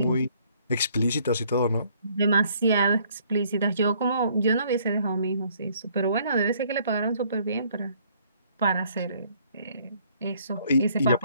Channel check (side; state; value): both; inverted; correlation -0.63